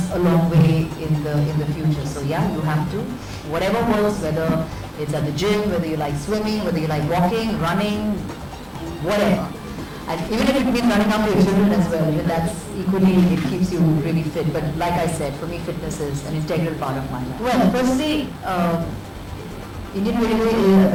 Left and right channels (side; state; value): both; identical; correlation 1.00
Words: a long way in the future. So yeah, you have to, whatever works, whether it's at the gym, whether you like swimming, whether you like walking, running, whatever. And even if it means running after your children as well, even that's equally, it keeps you really fit. But like I said, for me fitness is an integral part of my life. Well, firstly, Indian Railway, I